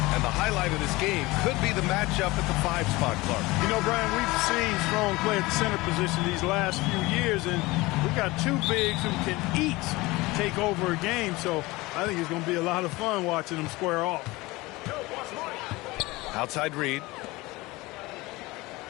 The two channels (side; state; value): right; quieter; 21.3 dB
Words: And the highlight of this game could be the matchup at the 5 spot, Clark. You know, Brian, we've seen Strong play at the center position these last few years, and we've got 2 bigs who can each take over a game, so I think it's going to be a lot of fun watching them square off. Outside Reid.